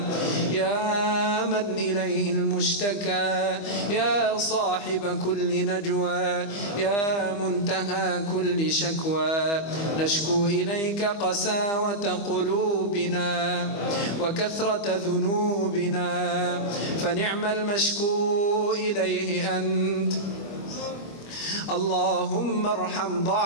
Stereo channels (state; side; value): late; right; 25 ms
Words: يا من إليه المشتكى يا صاحب كل نجوى يا منتهى كل شكوى، نشكو إليك قساوة قلوبنا وكثرة ذنوبنا، فنعم المشكو إليه أنت. اللهم ارحم